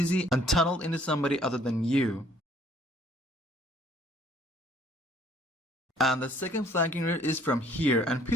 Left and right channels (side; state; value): both; normal; correlation 0.59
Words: and tunneled into somebody other than you. And the second flanking route is from here, and